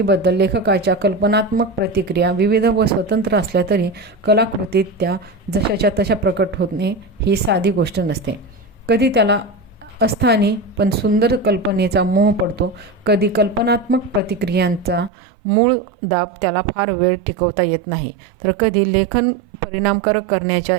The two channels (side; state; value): left; drops out; at 15.1 s